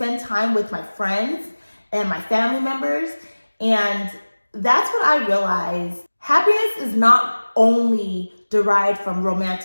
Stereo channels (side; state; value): both; inverted; correlation -1.00